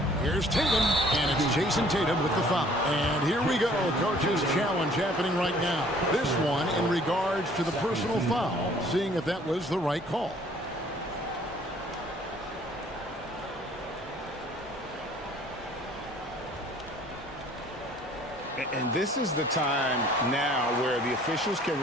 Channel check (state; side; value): normal; both; correlation 0.56